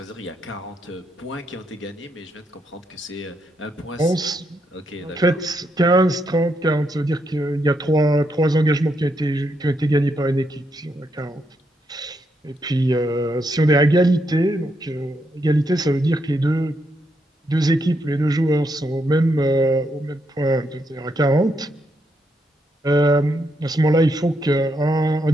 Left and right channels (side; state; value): both; normal; correlation 0.79